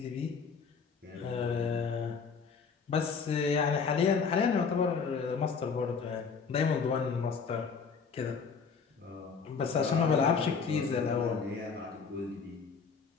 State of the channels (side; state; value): right; quieter; 5.6 dB